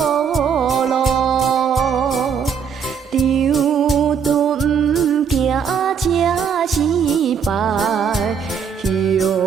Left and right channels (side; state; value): left; quieter; 6.8 dB